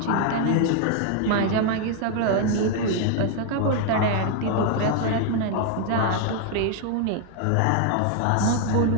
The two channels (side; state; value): both; different; correlation 0.00